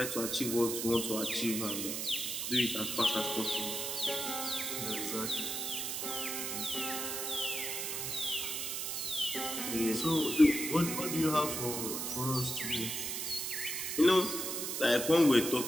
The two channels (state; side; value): noise; right; hiss, 3 dB below the sound